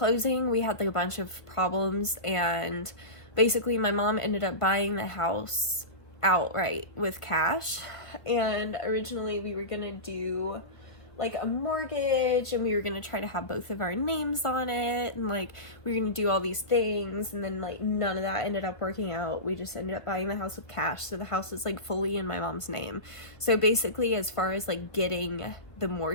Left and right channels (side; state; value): right; late; 1.5 ms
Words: we had like a bunch of problems, and basically my mom ended up buying the house outright with cash. And originally we were gonna do like a mortgage, and we were gonna try to have both of our names on it, and like we were gonna do all these things, and then like none of that ended up working out. We just ended up buying the house with cash, so the house is like fully in my mom's name. So basically, as far as like getting the